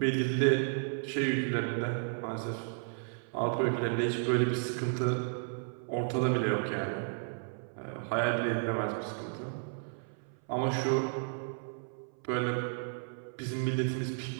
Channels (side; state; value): left; silent; 56 dB below the other